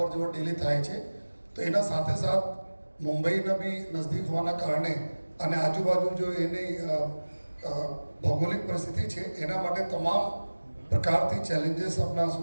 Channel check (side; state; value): both; inverted; correlation -1.00